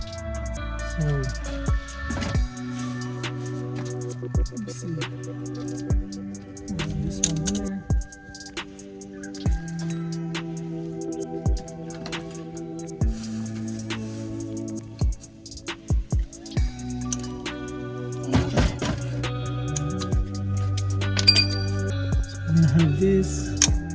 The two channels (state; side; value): identical; both; correlation 1.00